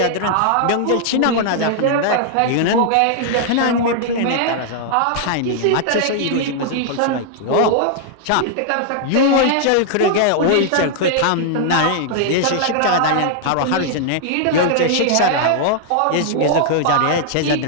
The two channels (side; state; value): both; different; correlation -0.01